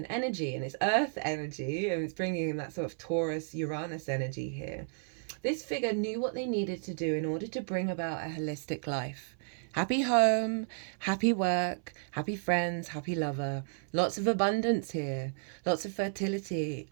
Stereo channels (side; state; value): left; silent; 56 dB below the other